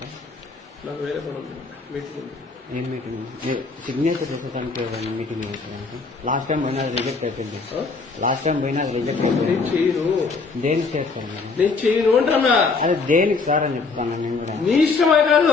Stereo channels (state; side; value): quieter; right; 4.3 dB